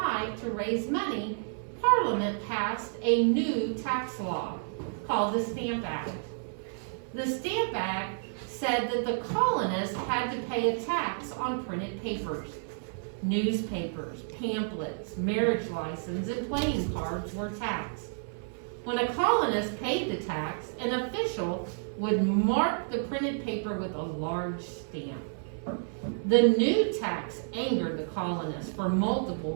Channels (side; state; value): left; silent; 57 dB below the other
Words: to raise money, Parliament passed a new tax law called the Stamp Act. The Stamp Act said that the colonists had to pay a tax on printed papers. Newspapers, pamphlets, marriage license, and playing cards were taxed. When a colonist paid the tax, an official would mark the printed paper with a large stamp. The new tax angered the colonists for multiple